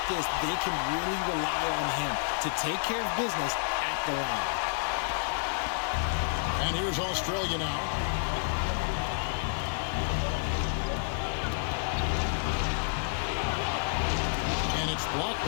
this, they can really rely on him to take care of business at the line. And here's Australia now. And it's blocked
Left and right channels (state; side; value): silent; right; digital silence